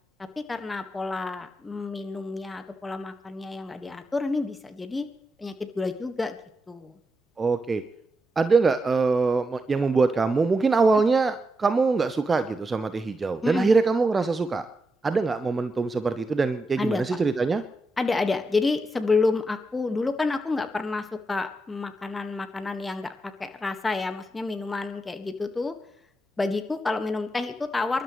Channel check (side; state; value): both; normal; correlation 0.87